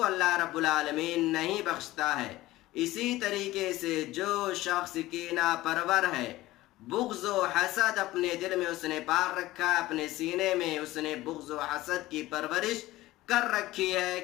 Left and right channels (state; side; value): quieter; right; 17.3 dB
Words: اللہ رب العالمین نہیں بخشتا ہے۔ اسی طریقے سے جو شخص کینہ پرور ہے، بغض و حسد اپنے دل میں اس نے پال رکھا ہے، اپنے سینے میں اس نے بغض و حسد کی پرورش کر رکھی ہے،